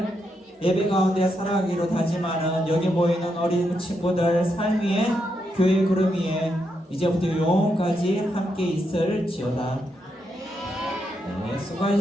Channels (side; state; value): both; normal; correlation 0.81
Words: 예배 가운데 살아가기로 다짐하는 여기 모이는 어린 친구들 삶 위에 교회 구름 위에 이제부터 영원까지 함께 있을지어다. 네,